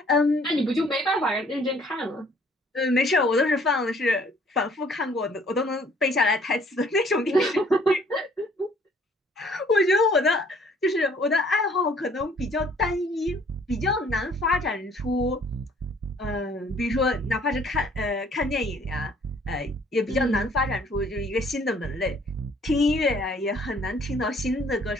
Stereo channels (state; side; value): normal; both; correlation 0.59